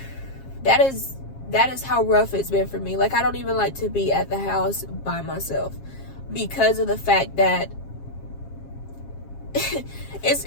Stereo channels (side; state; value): right; late; 7.4 ms